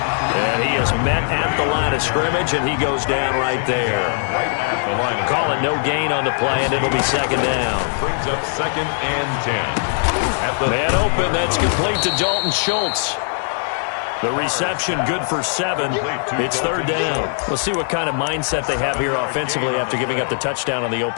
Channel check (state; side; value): silent; right; 66 dB below the other